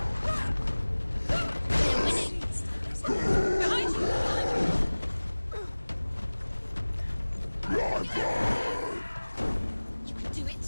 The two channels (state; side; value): inverted; both; correlation -1.00